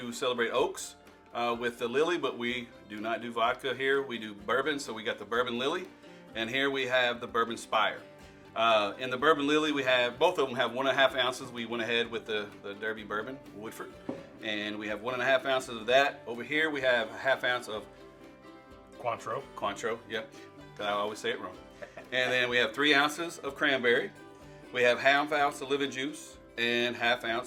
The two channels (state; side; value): identical; both; correlation 1.00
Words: celebrate Oaks with the Lily, but we do not do vodka here. We do bourbon, so we got the Bourbon Lily, and here we have the Bourbon Spire. In the Bourbon Lily, we have, both of them have 1.5 ounces. We went ahead with the Derby Bourbon, Woodford, and we have 1.5 ounces of that. Over here, we have a 1/2 ounce of Cointreau, yep. I always say it wrong. And then we have 3 ounces of cranberry. We have 1/2 ounce of lemon juice and 1/2